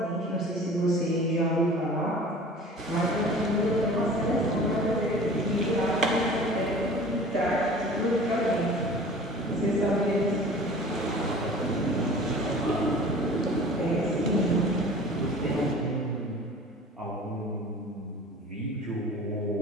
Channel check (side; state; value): both; normal; correlation 0.43